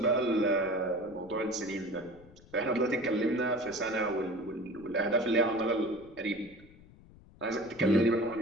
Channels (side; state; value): left; noise; rumble, 23 dB below the sound